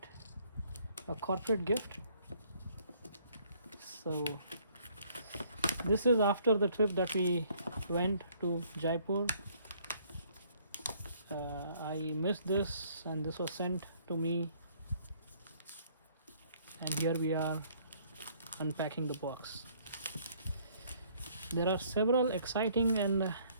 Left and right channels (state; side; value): inverted; both; correlation -0.62